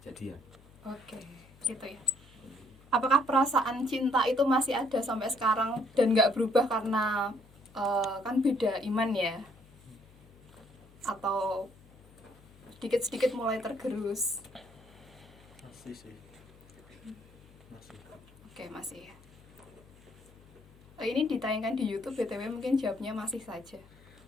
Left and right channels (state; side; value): noise; left; hum, 25 dB below the sound